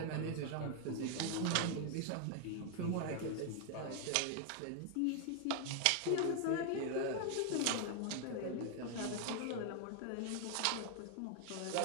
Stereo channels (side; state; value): both; different; correlation 0.00